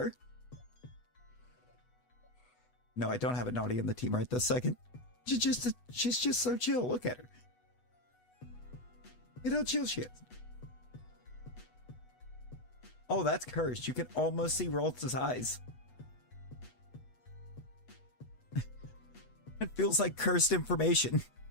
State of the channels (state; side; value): late; right; 8.1 ms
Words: No, I don't have a Naughty on the team right this second. She's just so chill. Look at her. Look at how chill she is. Oh, that's cursed. You can almost see Ralts' eyes. It feels like cursed information.